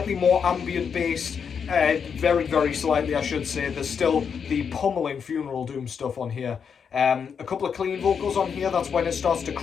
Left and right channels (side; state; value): right; quieter; 6.7 dB